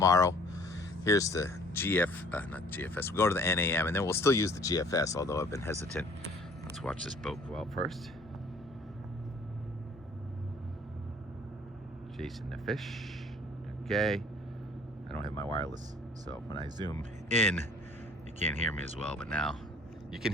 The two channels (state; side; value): normal; both; correlation 0.54